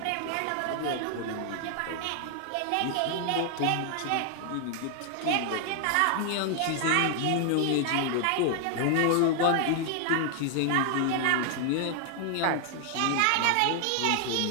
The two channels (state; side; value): different; both; correlation 0.00